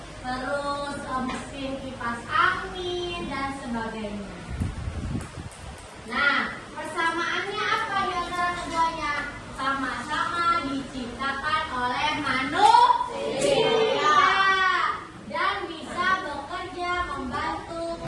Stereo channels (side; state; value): both; identical; correlation 1.00